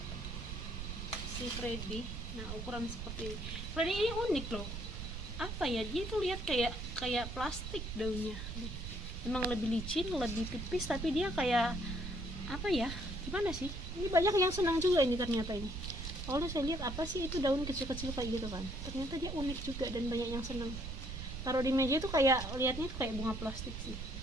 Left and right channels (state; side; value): noise; right; rumble, 6 dB below the sound